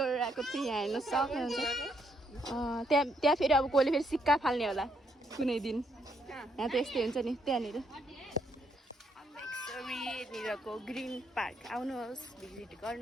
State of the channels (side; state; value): both; normal; correlation 0.74